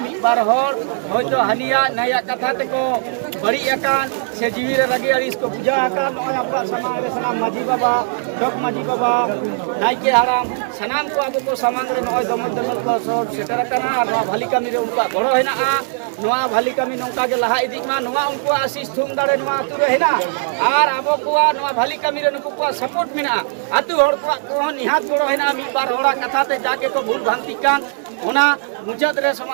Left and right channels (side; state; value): left; silent; digital silence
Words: बार हर होयतो हानिया नया कथा तको बड़ी एकान से जीवी रे रगी अड़िस को बुझा आकान नॉय आपका समांग रे सनाम माझी बाबा चौक माझी बाबा नाइके हराम सनाम को अब को समांग रे नॉय दमल दमल को सब सेटर कना नवा भाली कमी रे उनका गरो हेना नवा भाली कमी नोंका के लहा इदिक मा नवा उनको आशीष थुम दाड़े नवा आतु रे हेना आर अब को नवा भाली कमी रे नुको को सपोर्ट मिना आतु हर को निहात गड़ो हेना मी बार होड़ा कथा ते जाके को भूल भ्रांति कान ओना मुचाद रे